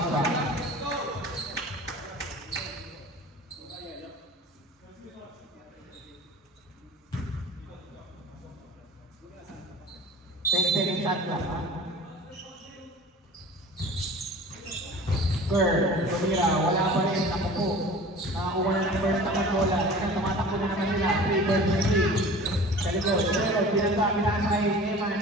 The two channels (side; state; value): both; normal; correlation 0.41